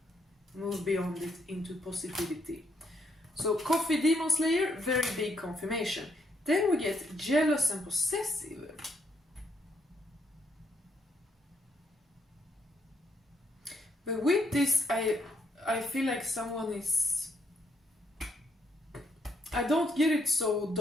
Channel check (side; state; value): both; normal; correlation 0.74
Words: move beyond it into positivity. So Coffee, Demon Slayer, very big confirmation. Then we get jealous and possessive. But with this, I feel like someone is... I don't get it so